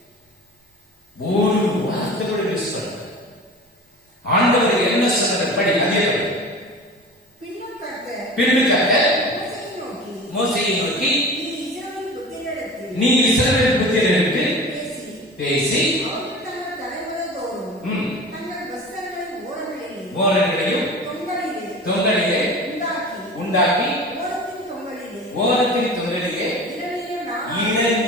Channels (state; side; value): normal; both; correlation 0.36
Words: ஒரு வார்த்தை கூட மிஸ் பண்ண. ஆண்டவர் என்ன சொன்னார் படி. அதே பின்னுக்காக மோசேயை நோக்கி நீ இஸ்ரவேல் புத்திரருக்கு பேசி ஓரங்களையும் தொங்கலிலே உண்டாக்கி ஓரத்தின் தொங்கலிலே